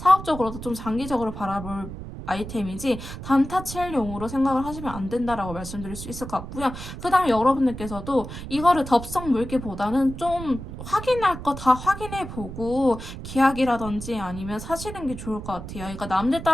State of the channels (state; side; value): noise; right; rumble, 10 dB below the sound